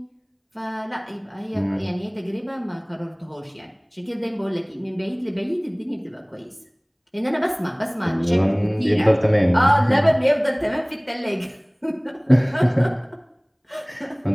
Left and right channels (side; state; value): both; identical; correlation 1.00